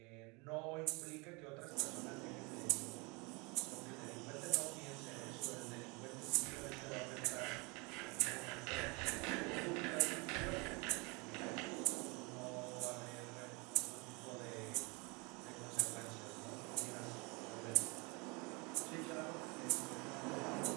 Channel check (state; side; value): quieter; left; 28.7 dB